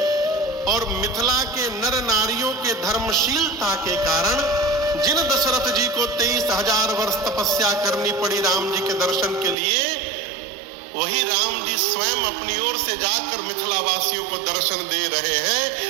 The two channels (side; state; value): left; drops out; at 9.6 s